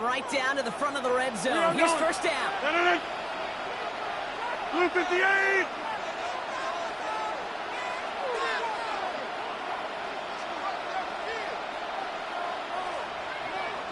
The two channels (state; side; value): identical; both; correlation 1.00